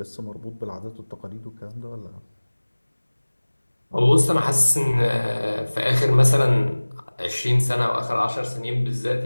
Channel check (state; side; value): inverted; both; correlation -1.00